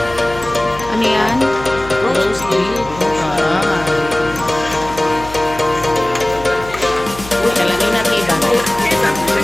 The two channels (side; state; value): left; noise; hum, 15 dB below the sound